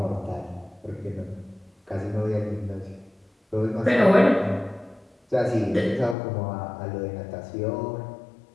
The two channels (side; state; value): right; drops out; at 6.2 s